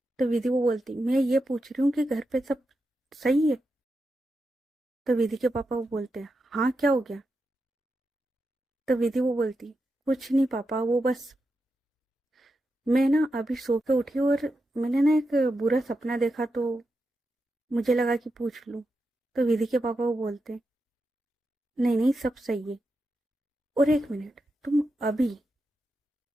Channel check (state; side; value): normal; both; correlation 0.88